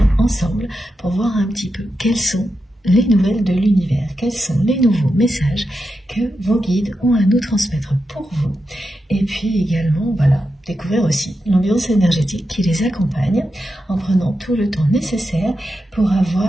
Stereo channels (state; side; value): normal; both; correlation 0.88